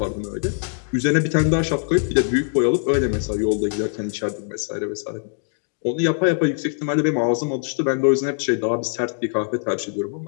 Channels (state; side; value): silent; right; 55 dB below the other